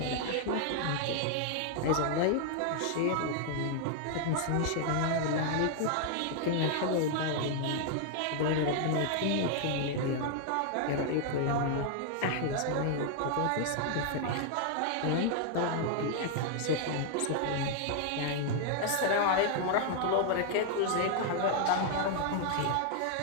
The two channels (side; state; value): both; different; correlation 0.00